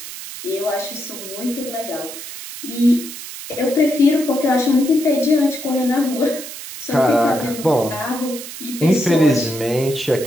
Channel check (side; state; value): right; noise; hiss, 11 dB below the sound